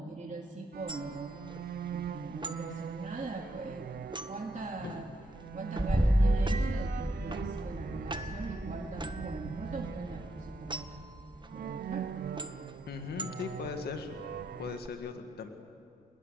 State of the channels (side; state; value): both; normal; correlation 0.77